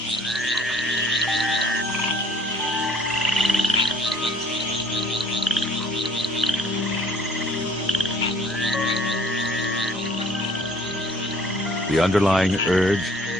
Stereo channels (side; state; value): both; normal; correlation 0.57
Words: The underlying urge